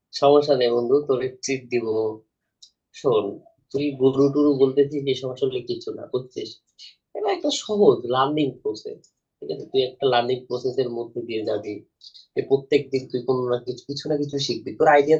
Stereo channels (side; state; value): both; identical; correlation 1.00